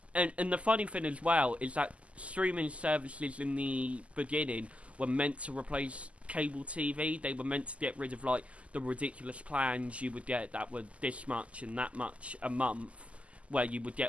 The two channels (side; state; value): left; late; 0.063 ms